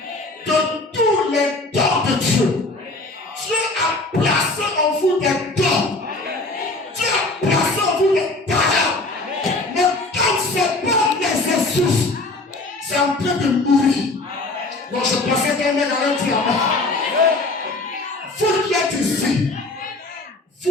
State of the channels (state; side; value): quieter; right; 3.0 dB